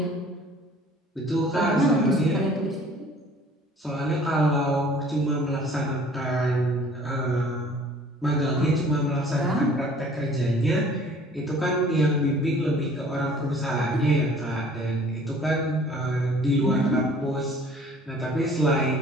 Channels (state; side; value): normal; both; correlation 0.52